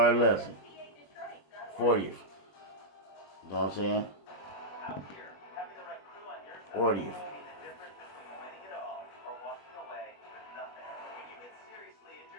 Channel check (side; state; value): right; late; 21 ms